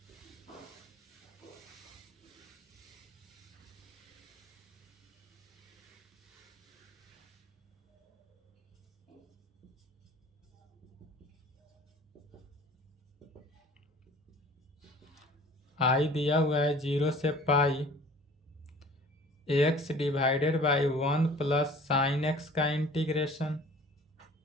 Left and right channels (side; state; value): both; normal; correlation 0.48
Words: आई दिया हुआ है 0 से pi x divided by 1 plus sine x का इंटीग्रेशन।